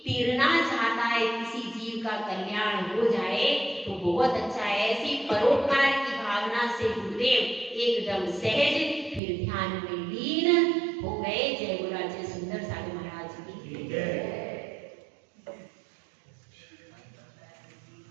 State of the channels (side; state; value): left; drops out; at 9.2 s